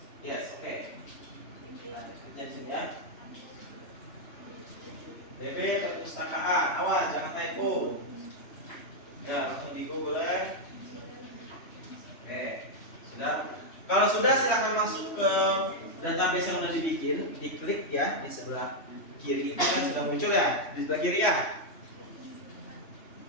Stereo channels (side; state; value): right; late; 3.1 ms